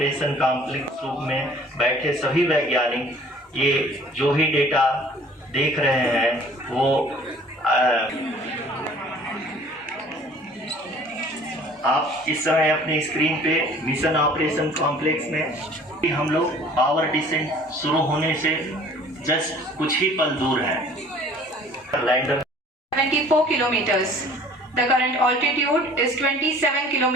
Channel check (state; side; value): normal; both; correlation 0.51